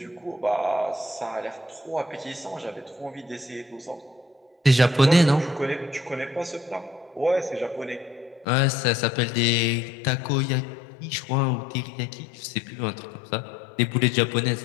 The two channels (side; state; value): right; drops out; at 8.5 s